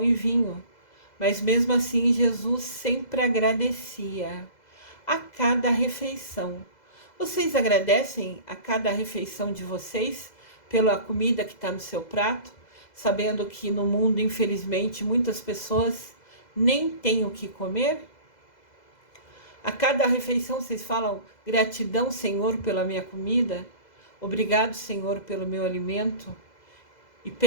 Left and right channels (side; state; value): right; late; 2.0 ms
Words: e vinho, mas mesmo assim Jesus sempre agradecia a cada refeição. Vocês agradecem a cada refeição de vocês pela comida que está no seu prato, sabendo que no mundo, infelizmente, muitas pessoas nem têm o que comer? A cada refeição vocês falam: gratidão, Senhor, pela minha comida, obrigado, Senhor, pelo meu alimento, e